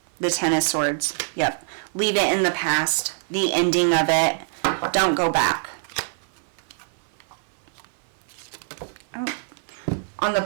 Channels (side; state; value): left; silent; 56 dB below the other